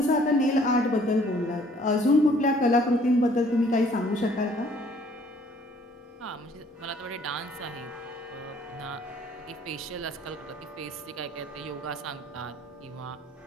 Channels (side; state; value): both; normal; correlation 0.59